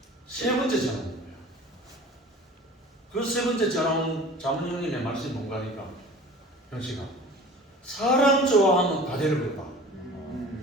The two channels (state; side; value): normal; both; correlation 0.42